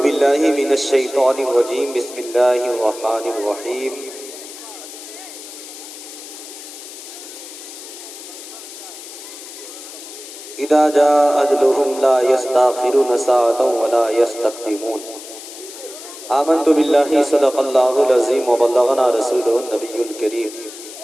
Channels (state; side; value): noise; left; hiss, 14 dB below the sound